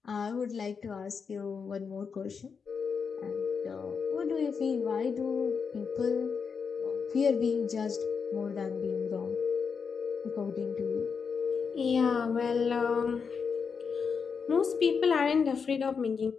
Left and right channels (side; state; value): right; quieter; 5.9 dB